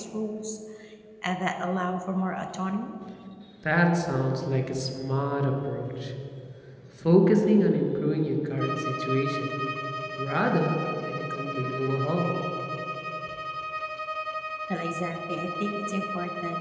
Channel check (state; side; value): identical; both; correlation 1.00